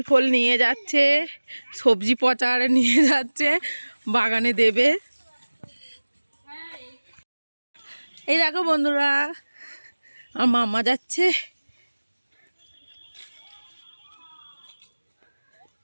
ফোল নিয়ে যাচ্ছে, সবজি পচারে নিয়ে যাচ্ছে, বাগানে দেবে। এই দেখো বন্ধুরা, আমার মামা যাচ্ছে।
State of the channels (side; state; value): both; inverted; correlation -1.00